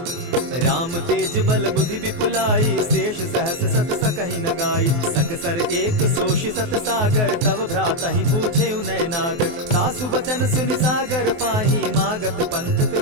राम तेज बल बुद्धि विपुलाई, शेष सहस सत सकहि न गाई। सकसर एक सोषि सत सागर, तव भ्रातहि पूछे उनय नागर। तासु बचन सुनि सागर पाही, मागत पंत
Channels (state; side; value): late; left; 23 ms